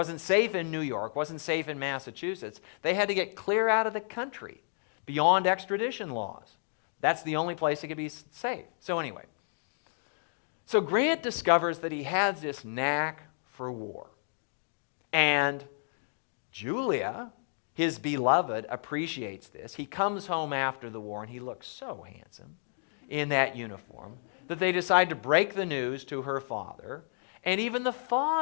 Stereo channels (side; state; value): right; silent; digital silence